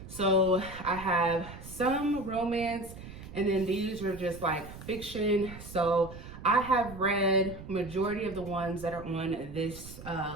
So I have some romance, and then these are just like fiction. So I have read majority of the ones that are on this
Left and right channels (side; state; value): right; noise; rumble, 14 dB below the sound